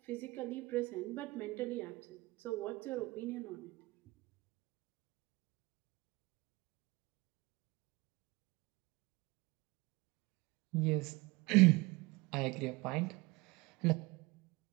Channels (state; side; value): quieter; left; 23.0 dB